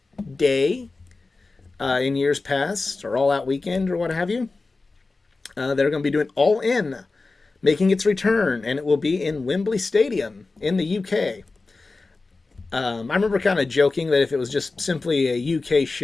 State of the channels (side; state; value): right; quieter; 3.7 dB